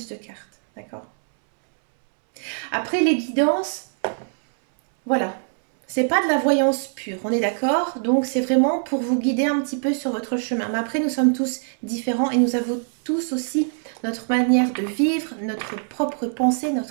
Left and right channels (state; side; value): silent; left; 64 dB below the other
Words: de cartes, d'accord? Après les guidances, voilà, c'est pas de la voyance pure, on est d'accord? Donc c'est vraiment pour vous guider un petit peu sur votre chemin. Mais après, nous sommes tous différents et nous avons tous aussi notre manière de vivre, notre propre pensée,